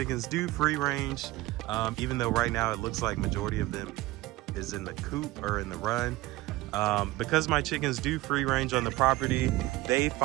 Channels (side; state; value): left; quieter; 18.7 dB